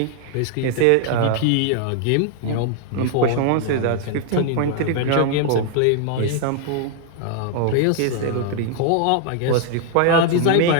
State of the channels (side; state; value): both; different; correlation 0.00